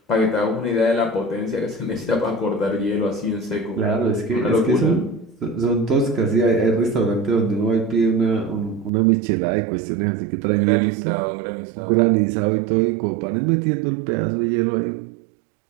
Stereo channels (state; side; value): drops out; left; at 8.9 s